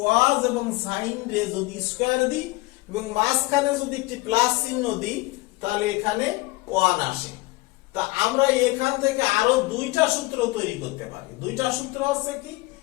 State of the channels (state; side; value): quieter; right; 21.6 dB